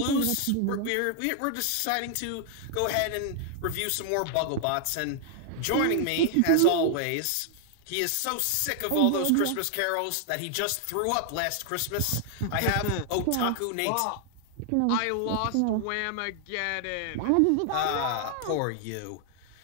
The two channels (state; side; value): different; both; correlation 0.00